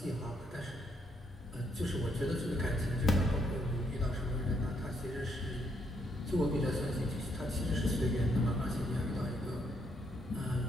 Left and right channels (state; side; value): normal; both; correlation 0.74